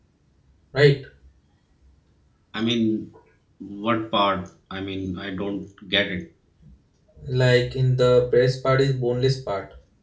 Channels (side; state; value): both; identical; correlation 1.00